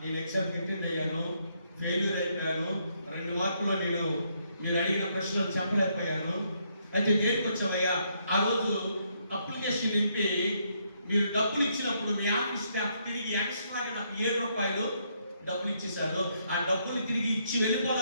ఎగ్జామ్ అటెండ్ అయ్యాను, ఫెయిల్యూర్ అయిపోయాను, 2 మార్కుల్లో నేను మీరు అడిగిన ప్రశ్నలు చెప్పలేకపోయాను. అయితే దేనికి వచ్చావయ్యా? ఆ రోజు అప్లికేషన్ నింపి మీరు డబ్బులు ఇచ్చినప్పుడు మీ ఆఫీస్ స్టాఫ్ తిరిగి ఎక్స్ట్రాగా నాకు 7 రూపాయలు డబ్బులు ఇచ్చేసారు. ఆ డబ్బులు తిరిగి ఇచ్చి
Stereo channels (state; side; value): inverted; both; correlation -0.74